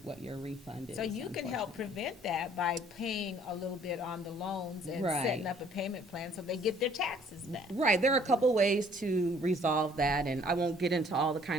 what your refund is. So you can help unfortunately. prevent that by paying a little bit on the loans and Right. setting up a payment plan so they get their taxes back. Right, there are a couple ways to resolve that, and I won't get into all the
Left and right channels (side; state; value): both; normal; correlation 0.58